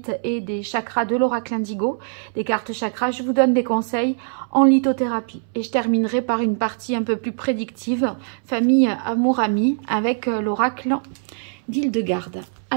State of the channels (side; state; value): left; silent; 64 dB below the other